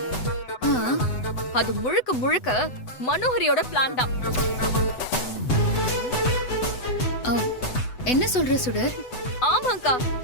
அது முழுக்க முழுக்க மனோஹரியோட பிளான் தான். என்ன சொல்ற சுடர்? ஆமாங்கா,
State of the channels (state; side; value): late; right; 8.0 ms